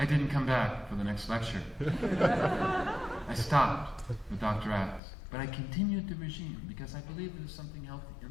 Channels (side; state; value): right; drops out; at 5.0 s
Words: didn't come back for the next lecture. I stopped with Dr. Axe, but I continued the regime because I believed there was something healthy in